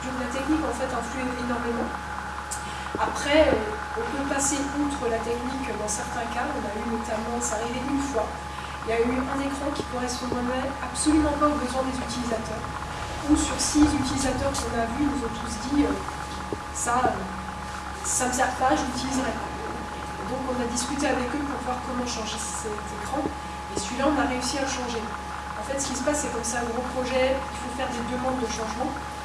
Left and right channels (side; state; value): both; identical; correlation 1.00